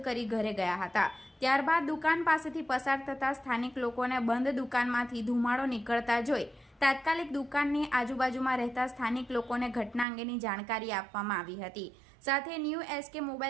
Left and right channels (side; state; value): left; drops out; at 10.1 s